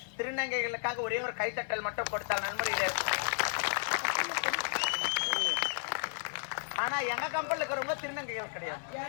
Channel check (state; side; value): silent; right; 56 dB below the other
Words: திருநங்கைகளுக்காக ஒரே ஒரு கைத்தட்டல் மட்டும் கொடுத்தால் நன்முறையில இருக்கும். ஆனா எங்க கம்பெனில இருக்கிறவங்க திருநங்கைகள் கிடையாது,